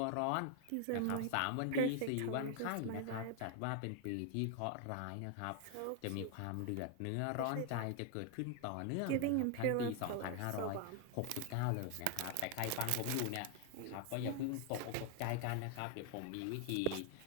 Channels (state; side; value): different; both; correlation 0.00